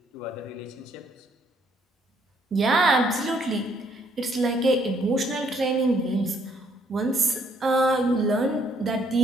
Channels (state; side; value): normal; both; correlation 0.68